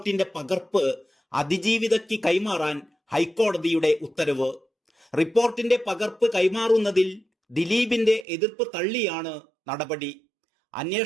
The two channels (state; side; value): drops out; left; at 8.2 s